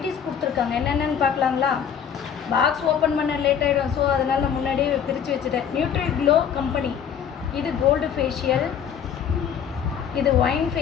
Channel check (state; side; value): quieter; right; 8.1 dB